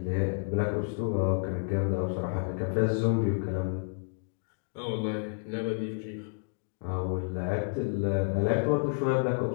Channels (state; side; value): silent; right; digital silence